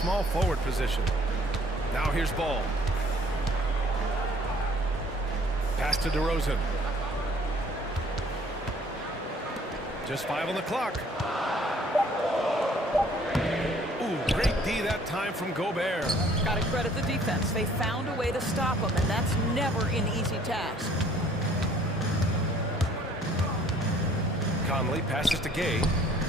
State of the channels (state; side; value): normal; both; correlation 0.58